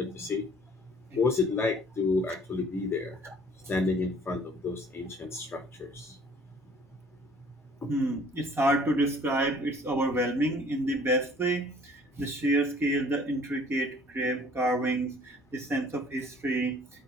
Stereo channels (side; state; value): both; normal; correlation 0.55